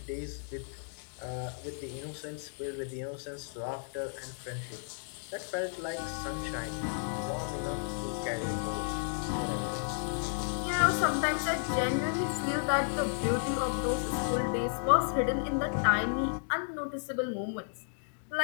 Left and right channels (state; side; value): silent; right; digital silence